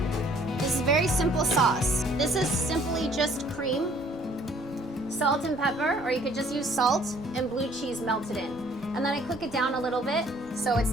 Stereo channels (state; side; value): normal; both; correlation 0.58